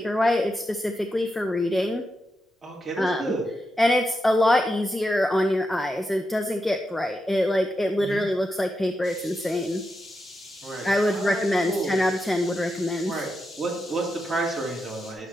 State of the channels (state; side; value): normal; both; correlation 0.86